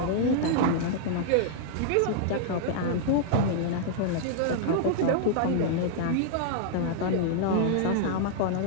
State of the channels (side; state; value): both; different; correlation -0.01